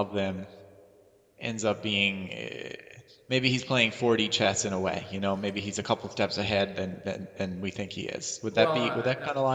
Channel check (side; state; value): both; identical; correlation 1.00